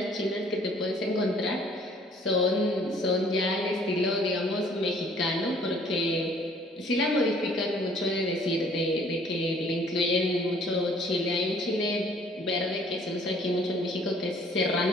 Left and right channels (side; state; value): both; normal; correlation 0.57